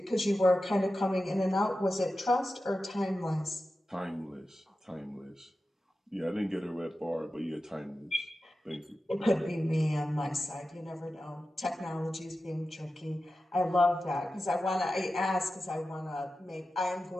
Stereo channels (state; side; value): normal; both; correlation 0.93